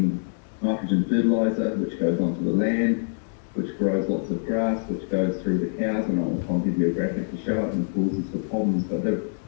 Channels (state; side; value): silent; right; digital silence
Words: nitrogen fertiliser, which goes onto the land, which grows lots of grass, which goes through the cows, and I'll give you a graphic to show it, and causes the problems. But